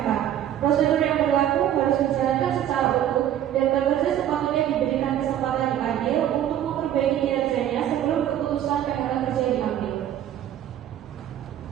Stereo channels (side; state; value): left; quieter; 11.1 dB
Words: Prosedur yang berlaku harus dijalankan secara utuh dan pekerja sepatutnya diberikan kesempatan yang adil untuk memperbaiki kinerjanya sebelum keputusan PHK kerja diambil.